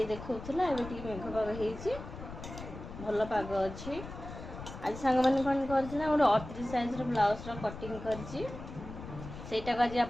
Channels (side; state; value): left; noise; rumble, 11 dB below the sound